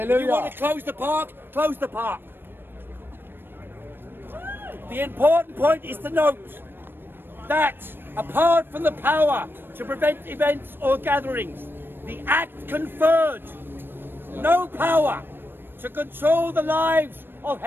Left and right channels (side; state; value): left; late; 0.098 ms